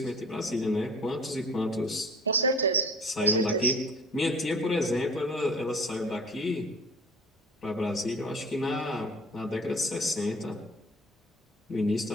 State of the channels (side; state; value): both; normal; correlation 0.45